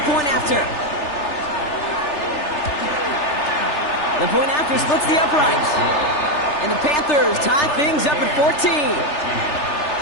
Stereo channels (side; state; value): right; late; 3.4 ms